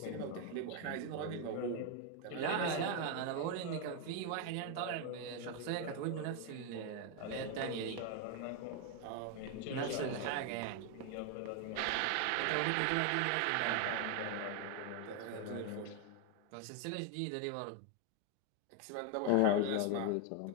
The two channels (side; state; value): both; different; correlation 0.01